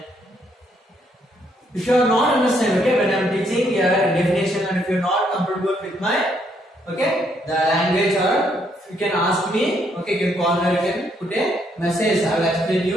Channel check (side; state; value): both; normal; correlation 0.72